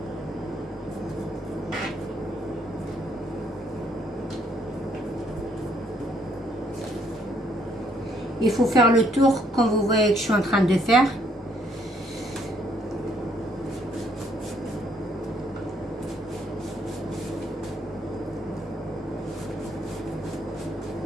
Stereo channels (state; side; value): normal; both; correlation 0.68